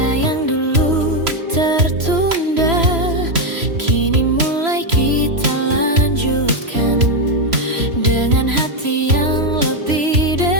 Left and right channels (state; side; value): late; left; 3.0 ms